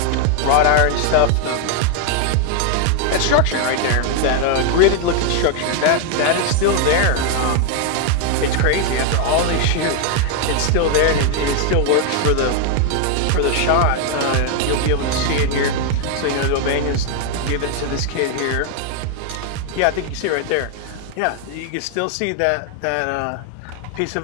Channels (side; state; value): both; different; correlation 0.01